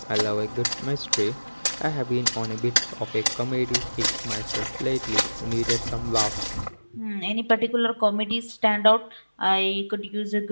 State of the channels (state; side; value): inverted; both; correlation -1.00